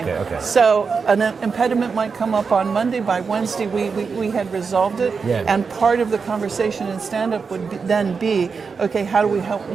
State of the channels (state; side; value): quieter; left; 5.3 dB